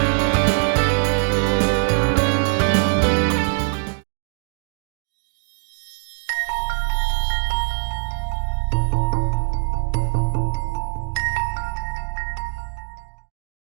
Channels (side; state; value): left; silent; 60 dB below the other